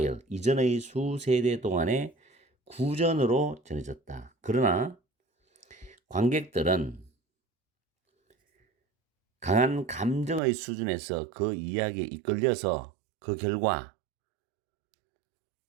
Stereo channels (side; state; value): left; drops out; at 10.4 s